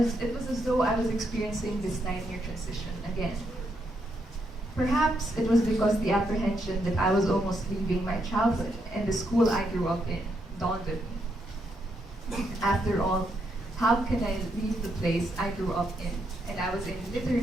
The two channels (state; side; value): normal; both; correlation 0.78